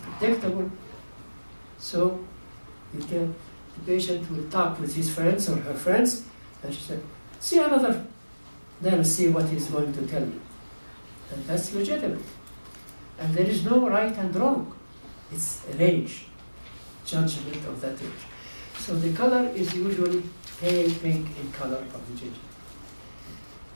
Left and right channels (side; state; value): both; inverted; correlation -1.00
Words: So you can, the patient will talk with his friends or her friends, and she said, see another, then see what he's going to tell you. And that's legitimate. And there is no right and wrong. It's a range, judgment of that range. So the color is usually pale pink in color of the gingiva.